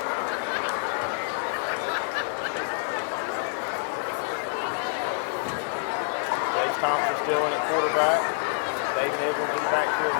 Jace Thompson still in at quarterback. David Edwards in the backfield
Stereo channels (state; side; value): quieter; right; 38.4 dB